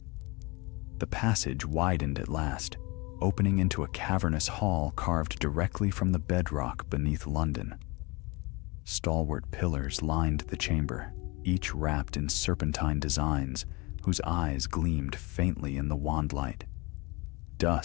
The passage widened at last, opening into a cavernous hall carved directly from the bedrock beneath London. Stalwart pillars lined the chamber, each wrapped in serpentine designs whose eyes gleamed faintly in the wand light.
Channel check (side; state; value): right; quieter; 25.5 dB